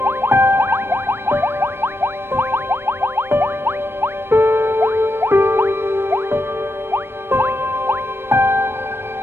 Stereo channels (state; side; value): late; left; 0.11 ms